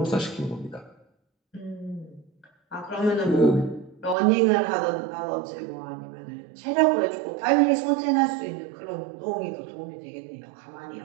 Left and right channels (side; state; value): left; drops out; at 4.2 s